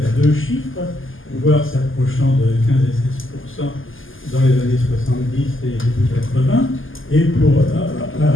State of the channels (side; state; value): right; late; 0.58 ms